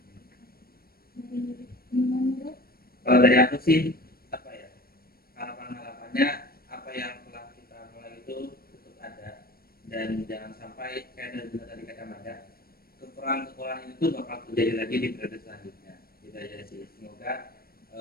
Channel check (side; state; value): right; late; 0.44 ms